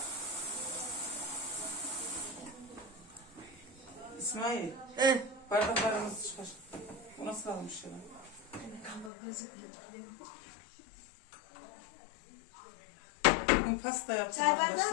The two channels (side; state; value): right; drops out; at 9.1 s